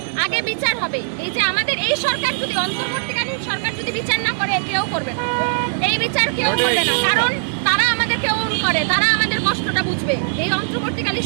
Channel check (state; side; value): silent; left; digital silence